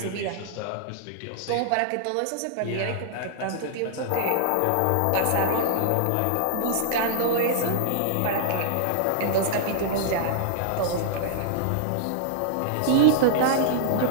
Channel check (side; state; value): both; different; correlation -0.01